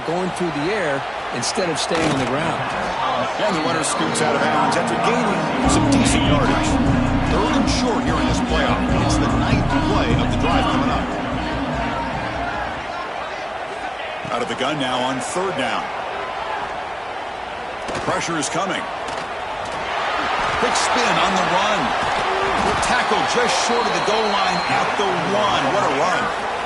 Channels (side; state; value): both; identical; correlation 1.00